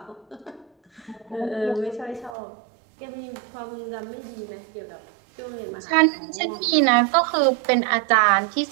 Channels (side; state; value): left; drops out; at 2.3 s